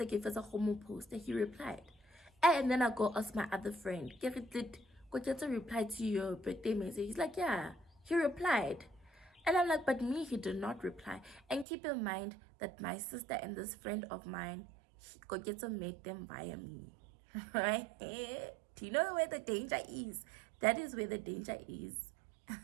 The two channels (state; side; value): drops out; left; at 11.7 s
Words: gave us a homo post that he replied. And then I go ask my other friend, did Koketso reply to your birthday message? He's like, yeah, he replied. And I'm like, but me, he did not reply. And keep in mind that my sister and this friend of mine, Koketso made them via me. Right? Do you know where the danger is? That is where the danger is.